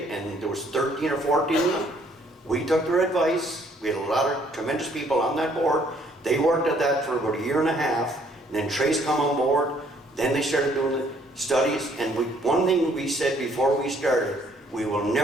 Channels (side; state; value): both; normal; correlation 0.63